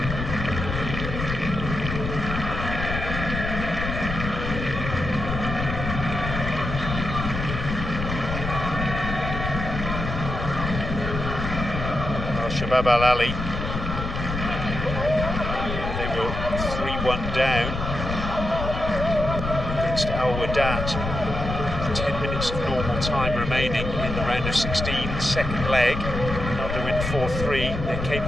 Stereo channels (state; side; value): noise; left; rumble, 4 dB below the sound